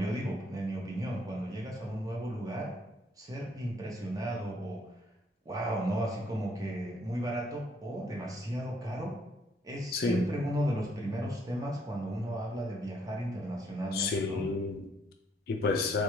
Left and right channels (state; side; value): normal; both; correlation 0.68